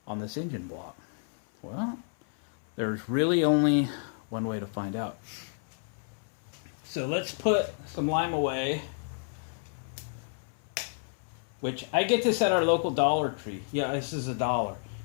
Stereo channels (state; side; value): silent; right; 57 dB below the other